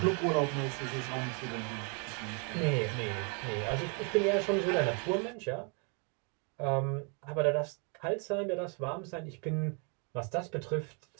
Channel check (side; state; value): left; quieter; 36.9 dB